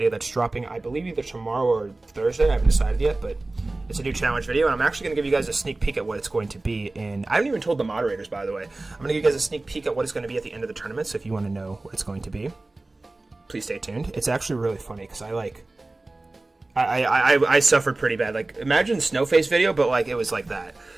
that's dropping, I believe, either tomorrow or Thursday. I haven't decided yet, but it's a new challenge video, and I'm actually going to give you guys a sneak peek at what it's going to be. And I haven't even told the moderators, by the way. I'm going to give you guys a sneak peek at what it's going to be at the end of the tournament. So if you want to know what it's going to be, please stay tuned. It's actually really funny because I suffered pretty bad. Like, imagine Snowface video, but like it was like that.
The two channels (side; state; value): left; quieter; 3.0 dB